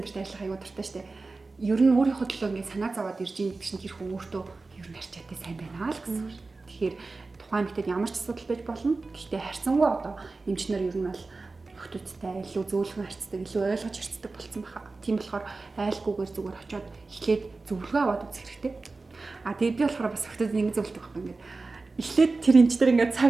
төрт ажиллах аягүй дуртай штэ. Ер нь өөрийнхөө төлөө ингээд санаа зовоод ирж ийн гэсэн тэр хүн өөртөө ер нь харчаатай сайн байна л гэсэн үг. Тэгэхээр тухайн эмэгтэйд ямар ч асуудал байж болно. Гэхдээ харьцангуй одоо эмчнэр ер нь бол охтуудтай илүү зөөлхөн харьцдаг, илүү ойлгож харьцдаг болсон баха. Тийм болохоор айлгүйгээр зүгээр очиод эхлээд зөвлөгөө аваад үзэх хэрэгтэй. Тэгээд би болохоор бас охтууд ингэ зөвлөдөг байхгүй ингээд эхлээд тэр эмчтэр ингээд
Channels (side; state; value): left; quieter; 3.7 dB